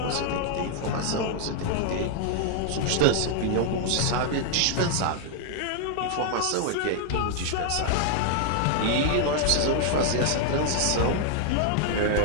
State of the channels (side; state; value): both; different; correlation 0.00